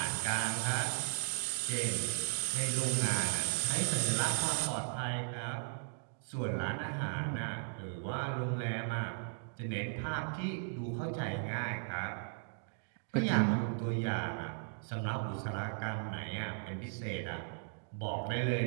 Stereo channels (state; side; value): silent; left; digital silence